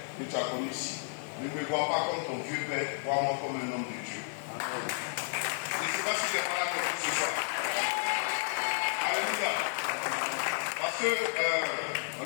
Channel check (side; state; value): right; silent; 56 dB below the other